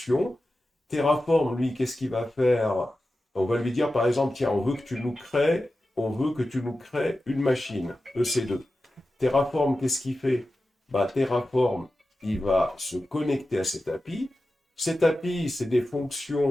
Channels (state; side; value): normal; both; correlation 0.93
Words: Terraform, lui, qu'est-ce qu'il va faire? On va lui dire, par exemple, tiens, on veut que tu nous crées une machine, EC2. Terraform, qu'est-ce qu'il fait? Terraform, il va se connecter à cette API. Cette API, c'est des